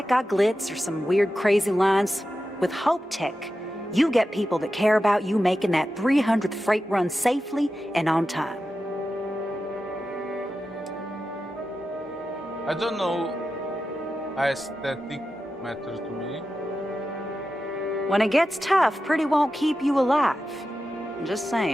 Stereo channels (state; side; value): normal; both; correlation 0.91